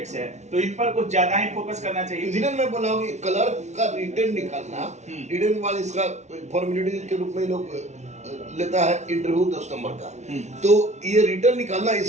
से है। तो इन पर कुछ ज्यादा ही फोकस करना चाहिए। इसलिए मैं बोला हूँ कि क्लर्क का रिटर्न निकालना, रिटर्न के बाद इसका फॉर्मेलिटी के रूप में लोग लेता है इंटरव्यू 10 नंबर का, तो ये रिटर्न निकालना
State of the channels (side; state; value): left; late; 0.33 ms